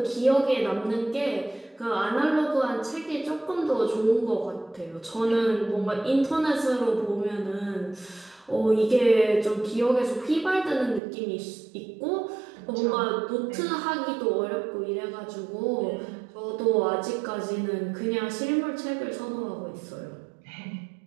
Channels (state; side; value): drops out; left; at 11.0 s